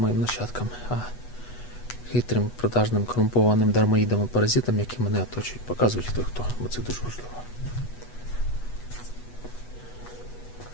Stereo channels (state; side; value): late; right; 8.2 ms